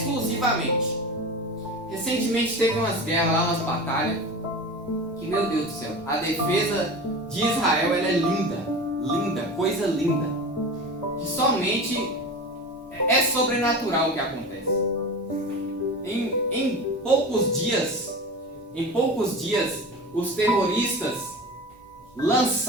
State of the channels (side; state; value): both; normal; correlation 0.30